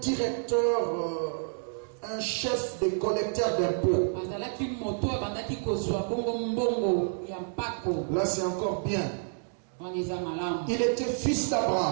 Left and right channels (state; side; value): silent; left; digital silence